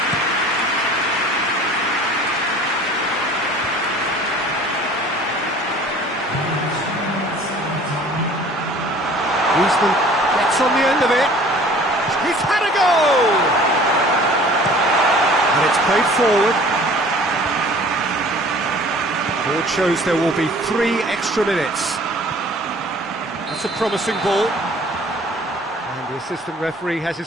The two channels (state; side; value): normal; both; correlation 0.49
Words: Griezmann gets on the end of it. He's had a goal! And it's played forward. Board shows there will be 3 extra minutes. That's a promising ball. And the assistant referee has